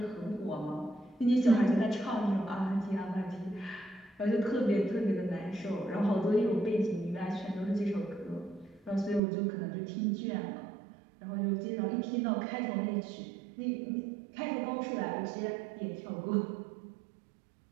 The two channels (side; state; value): left; drops out; at 9.2 s